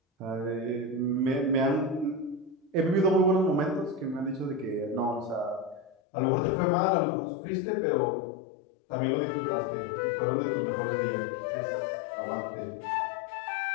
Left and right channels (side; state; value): right; drops out; at 6.0 s